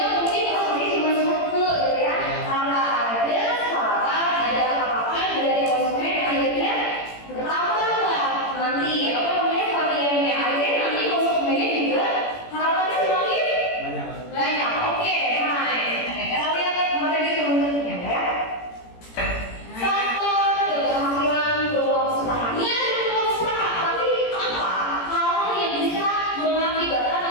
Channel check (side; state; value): right; late; 17 ms